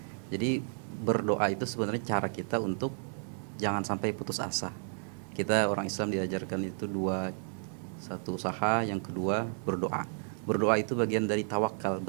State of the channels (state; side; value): silent; left; 56 dB below the other